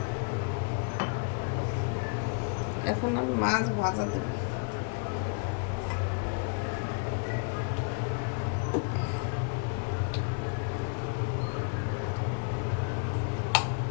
এখন আমি মাছ ভাজা দেব।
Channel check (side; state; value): right; quieter; 37.0 dB